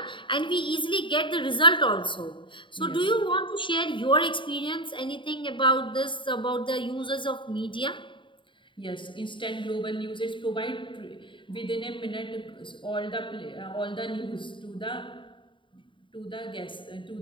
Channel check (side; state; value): right; late; 0.24 ms